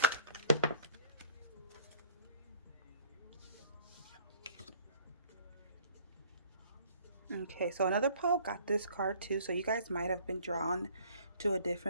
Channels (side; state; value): both; inverted; correlation -0.53